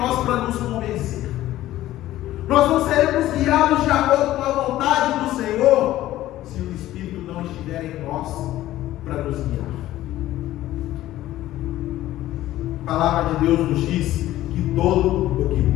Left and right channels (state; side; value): quieter; right; 14.7 dB